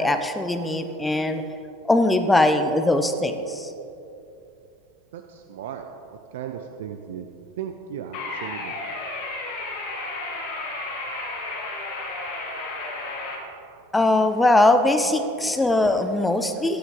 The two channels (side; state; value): both; normal; correlation 0.71